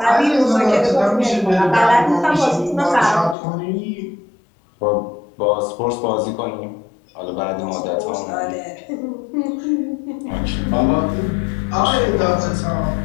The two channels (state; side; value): drops out; right; at 3.4 s